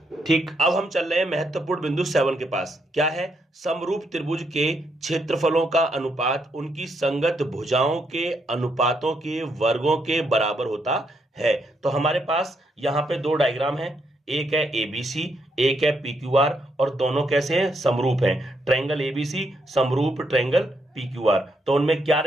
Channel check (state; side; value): normal; both; correlation 0.77